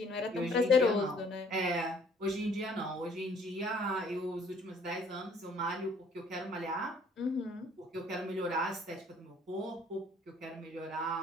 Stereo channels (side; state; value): both; normal; correlation 0.59